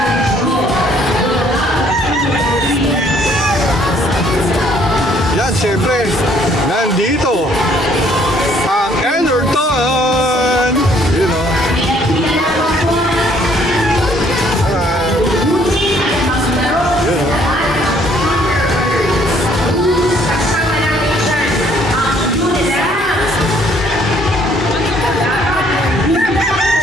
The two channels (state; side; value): normal; both; correlation 0.63